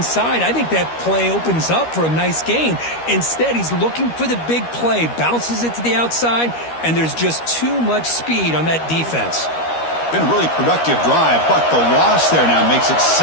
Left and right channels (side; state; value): right; late; 13 ms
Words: I think that play opens up for a nice gain. Instead, he's looking for the big play, bounces it to the outside, and there's just too much speed on that defense. Been a really productive drive, but the loss there now makes it